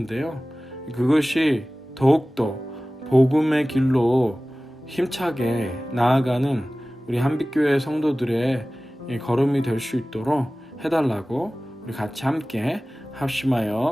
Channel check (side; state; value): both; normal; correlation 0.97